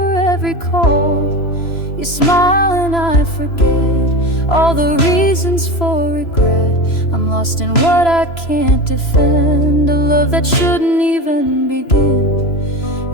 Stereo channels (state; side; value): late; right; 3.0 ms